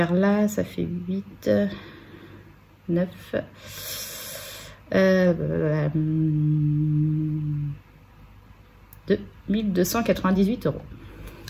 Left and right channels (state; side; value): identical; both; correlation 1.00